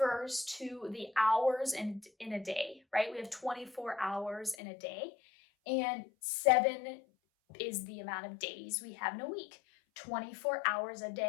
to the hours in a day, right? We have 24 hours in a day, and 7 is the amount of days we have in a week. 24 hours a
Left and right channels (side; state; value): right; drops out; at 4.5 s